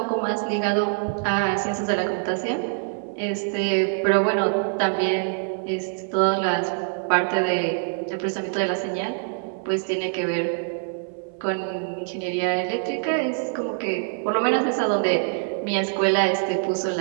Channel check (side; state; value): left; silent; 62 dB below the other